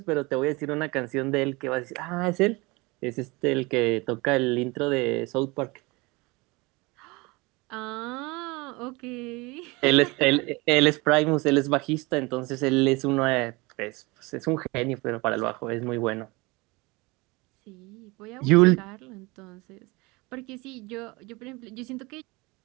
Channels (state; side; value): quieter; left; 24.7 dB